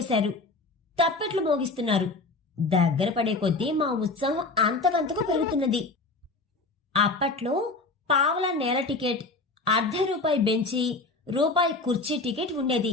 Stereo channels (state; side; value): quieter; right; 3.5 dB